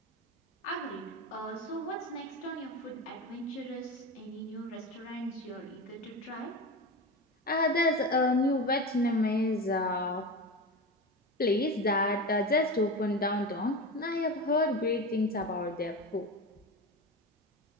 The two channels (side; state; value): both; normal; correlation 0.24